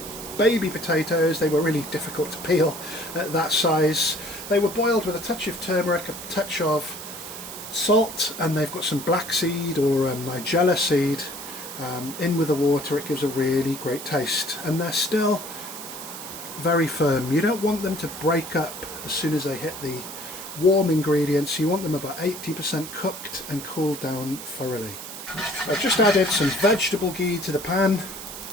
baby potatoes. They were really difficult to peel at that size. They were boiled with a touch of turmeric, a touch of salt, and they've got some black seed or nigella seed in with the water. It gives a really great taste, and they're still very firm. You don't want them to break up as soon as they hit the warm ingredients. You want them about 80% cooked and cooled down thoroughly. I've just added some vegetable ghee to the pan.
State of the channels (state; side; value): noise; right; hiss, 11 dB below the sound